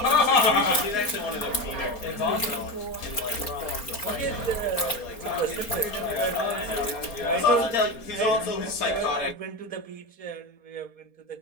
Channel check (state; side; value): late; right; 4.4 ms